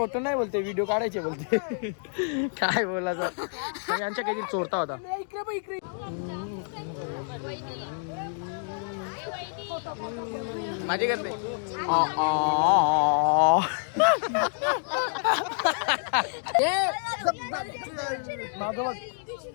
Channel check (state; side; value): silent; right; digital silence